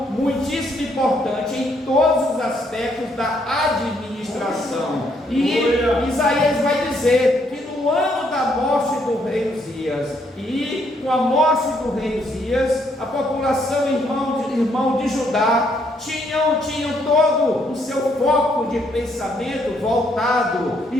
muitíssimo importante em todos os aspectos da administração. E Isaías vai dizer que no ano da morte do rei Uzias. E com a morte do rei Uzias, a população irmão de Judá tinham todo o seu foco de pensamento voltado e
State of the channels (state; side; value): normal; both; correlation 0.72